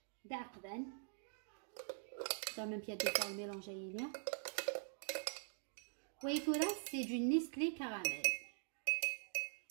دعقدان dans même pied de faire le mélange aérien. Oui, tout là c'est du Nestlé caramel.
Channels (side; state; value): left; silent; digital silence